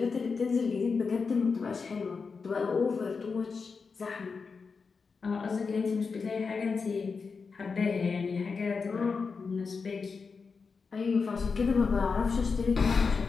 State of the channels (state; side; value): quieter; right; 5.0 dB